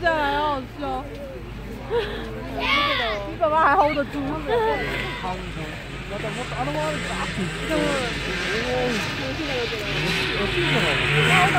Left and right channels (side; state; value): both; identical; correlation 1.00